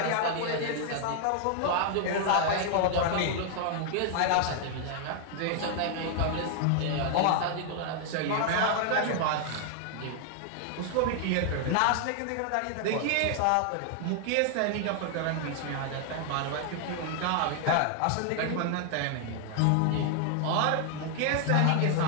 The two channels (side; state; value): both; different; correlation 0.00